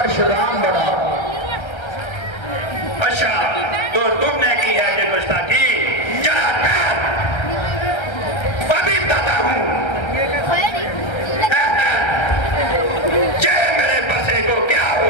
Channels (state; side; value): late; right; 1.3 ms